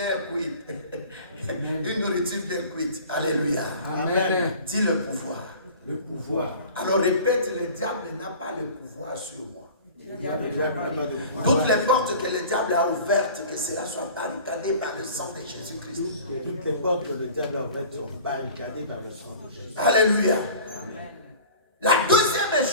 cuite. Une nourriture bien cuite. Alléluia. Amen. Dis le pouvoir. Le pouvoir. Alors répète, le diable n'a pas le pouvoir sur moi. Le diable n'a pas de pouvoir. Toutes les portes que le diable a ouvertes, que cela soit barricadé par le sang de Jésus-Christ. Toutes les portes que le diable a ouvertes sont barricadées par le sang de Jésus. Alléluia. La deuxième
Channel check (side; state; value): both; inverted; correlation -0.42